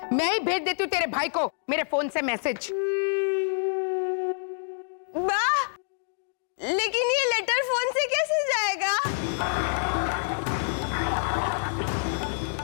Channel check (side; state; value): right; silent; digital silence